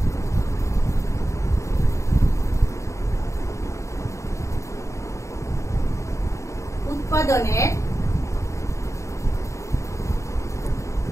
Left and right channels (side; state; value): right; late; 0.14 ms